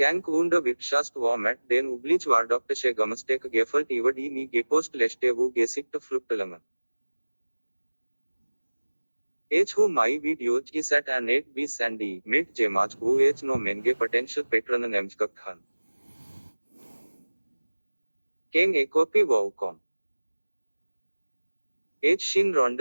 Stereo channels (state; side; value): inverted; both; correlation -1.00